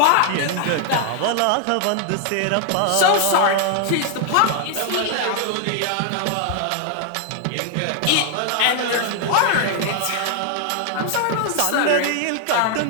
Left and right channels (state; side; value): different; both; correlation 0.00